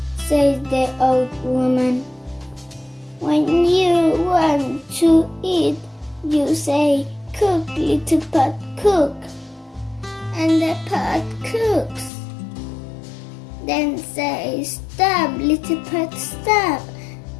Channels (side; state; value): right; drops out; at 12.1 s